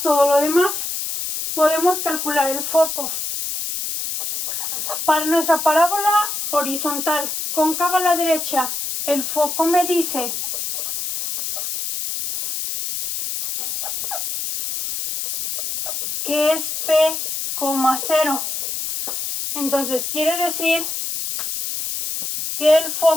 todo lo demás. Podemos calcular el foco. Para nuestra parábola horizontal cóncava a la derecha, el foco me dice que es p, 0. Entonces quiere decir que el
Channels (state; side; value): noise; left; hiss, 4 dB below the sound